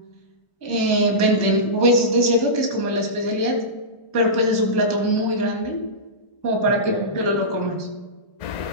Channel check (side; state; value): right; late; 1.7 ms